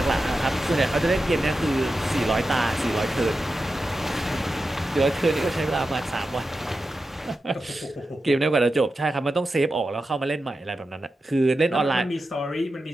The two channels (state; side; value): normal; both; correlation 0.91